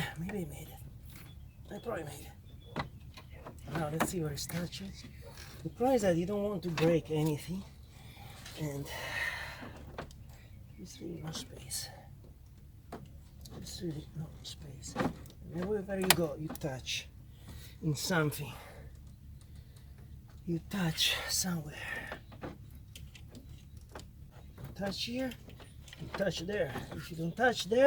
maybe I made it. I probably made it. Now let's see where it's touching. The problem is that you don't want to break anything, and there's really no space. There's really no space. And wherever you go, you touch in something. You touch somewhere. You touch here, you touch there. If you don't touch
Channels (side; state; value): both; identical; correlation 1.00